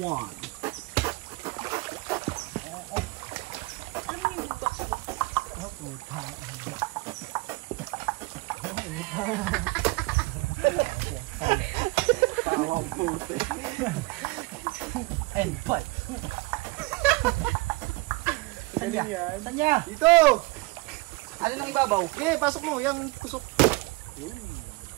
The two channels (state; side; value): quieter; left; 24.2 dB